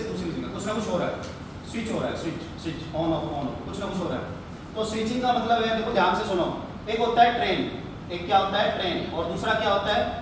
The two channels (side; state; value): both; identical; correlation 1.00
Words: दूसरी जगह, कुछ ना कुछ हो रहा है, स्विच हो रहा है, स्विच ऑन ऑफ कुछ ना कुछ हो रहा है। तो स्विचिंग का मतलब है, देखो ध्यान से सुनो, एक होता है ट्रेन, एक क्या होता है ट्रेन, और दूसरा क्या होता है